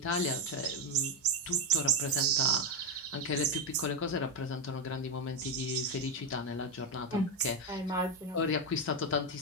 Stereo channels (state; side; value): normal; both; correlation 0.08